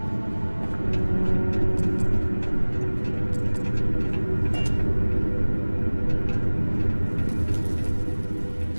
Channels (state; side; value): inverted; both; correlation -1.00